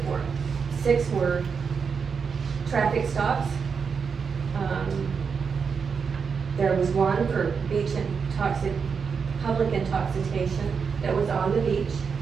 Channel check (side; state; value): left; quieter; 5.9 dB